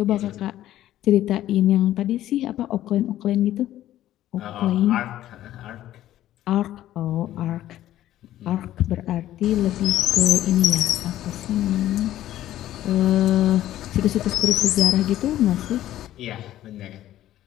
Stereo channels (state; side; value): quieter; right; 13.3 dB